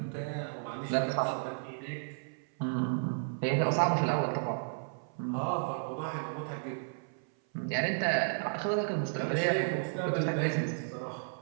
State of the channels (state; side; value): silent; left; 56 dB below the other